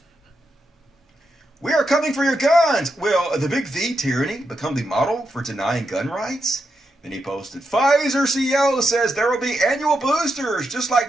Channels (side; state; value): both; normal; correlation 0.85